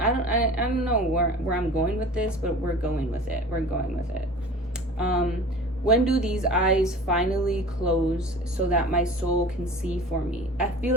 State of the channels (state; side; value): normal; both; correlation 0.39